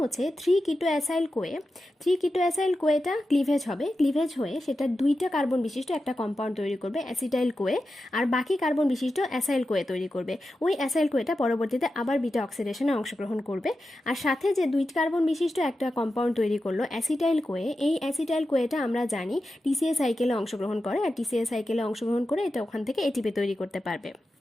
3 কিটো অ্যাসাইল কোয়ে, 3 কিটো অ্যাসাইল কোয়েটা ক্লিভেজ হবে, ক্লিভেজ হয়ে সেটা 2টা কার্বন বিশিষ্ট একটা কম্পাউন্ড তৈরি করবে অ্যাসিটাইল কোয়ে, আর বাকি কার্বন বিশিষ্ট অ্যাসাইল কোয়ে তৈরি করবে। ওই অ্যাসাইল কোয়েটা পরবর্তীতে আবার বিটা অক্সিডেশনে অংশগ্রহণ করবে, আর সাথে যে 2 কার্বন বিশিষ্ট একটা কম্পাউন্ড তৈরি করলো অ্যাসিটাইল কোয়ে, এই অ্যাসিটাইল কোয়েটা আমরা জানি টিসিএ সাইকেলে অংশগ্রহণ করে, আর টিসিএ সাইকেলে অংশগ্রহণ করে এটা ওখান থেকে এটিপি তৈরি করতে পারবে।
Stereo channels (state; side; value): normal; both; correlation 0.91